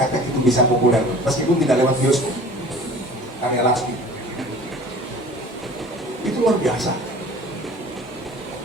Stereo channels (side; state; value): both; normal; correlation 0.45